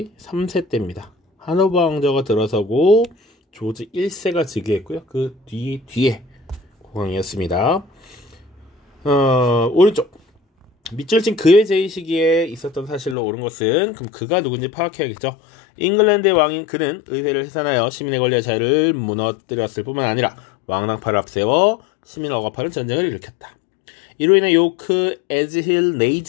3세 때입니다. 하노버 왕조가 들어서고 조지 1세가 즉위했고요. 그 뒤에 국왕이었습니다. 오른쪽 밑줄친 그의 제위 시기에 있었던 사실로 옳은 것은 그럼 그가 누군지 파악해야겠죠. 잉글랜드의 왕인 그는 의회를 해산하여 시민의 권리와 자유를 무너뜨렸을 뿐만 아니라 왕당파를 앞세워 시민을 억압하는 전쟁을 일으켰다. 이로 인해 요크, 에즈힐,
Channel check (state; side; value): drops out; right; at 13.2 s